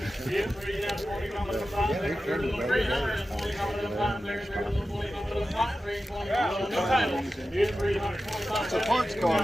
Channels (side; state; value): both; normal; correlation 0.93